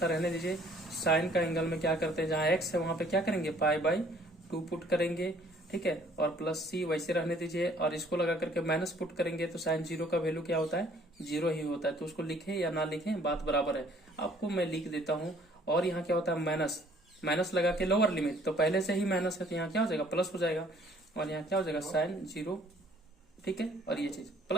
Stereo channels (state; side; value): normal; both; correlation 0.59